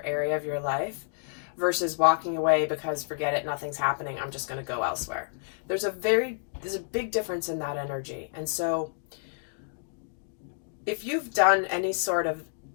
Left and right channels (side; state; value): right; silent; digital silence